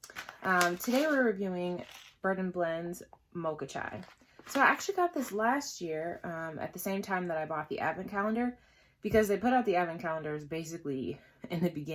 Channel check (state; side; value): identical; both; correlation 1.00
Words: Today we're reviewing Bird & Blend's Mocha Chai. So I actually got this last year at the same time that I bought the advent calendar, because they put out the advent calendars basically in the